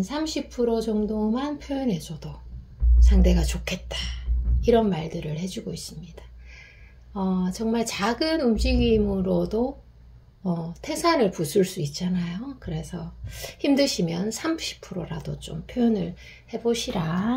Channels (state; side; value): identical; both; correlation 1.00